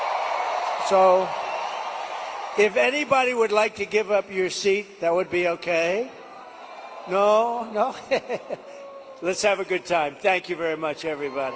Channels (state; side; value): identical; both; correlation 1.00